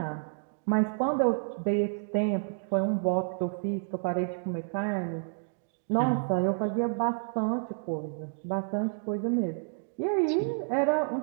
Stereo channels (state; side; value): silent; left; digital silence